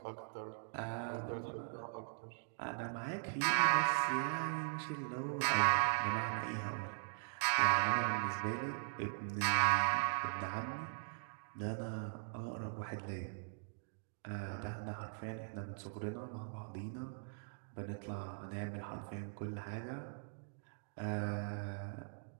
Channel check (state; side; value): silent; left; digital silence